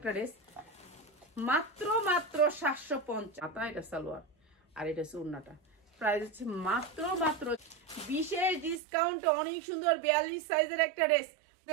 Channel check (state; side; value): drops out; left; at 8.8 s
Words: ড্রেস, মাত্র মাত্র 750। এটা সালোয়ার আর এটা হচ্ছে উন্নাটা, প্রাইস হচ্ছে মাত্র মাত্র বিশেষ ডিসকাউন্ট। অনেক সুন্দর 42 সাইজের একটা ড্রেস।